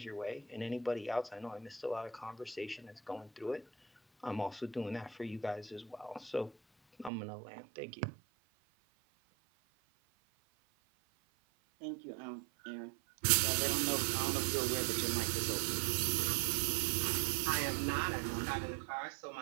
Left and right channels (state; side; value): drops out; left; at 7.1 s